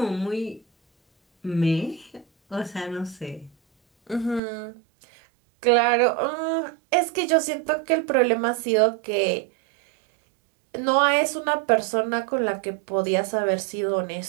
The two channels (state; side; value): drops out; left; at 4.4 s